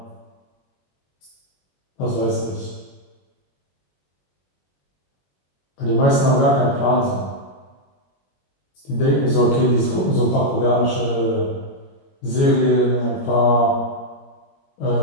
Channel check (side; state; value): right; late; 21 ms